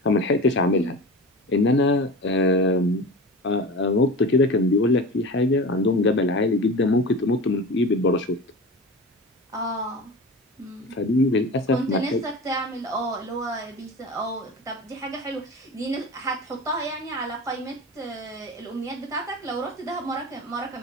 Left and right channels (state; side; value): normal; both; correlation 0.31